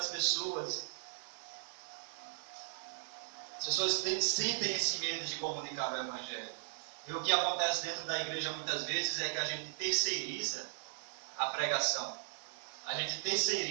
pessoas? As pessoas sentem esse medo de comunicar o Evangelho. E o que acontece dentro da igreja muitas vezes é que a gente terceiriza a pregação. A gente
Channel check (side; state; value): left; silent; digital silence